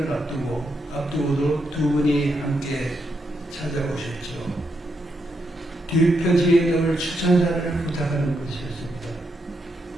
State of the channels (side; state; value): both; normal; correlation 0.81